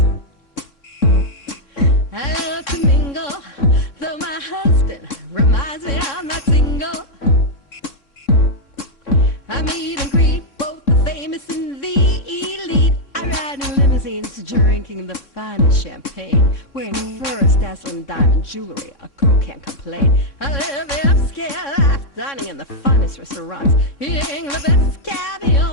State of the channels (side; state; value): right; late; 3.6 ms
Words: I love to mingle, though my husband reminds me I'm not single. I meet and greet both the famous and the elite. I ride in limousines, drinking the finest champagne, wearing furs, dazzling diamond jewelry. A girl can't complain. I live upscale life, dining in the finest restaurants, eating the best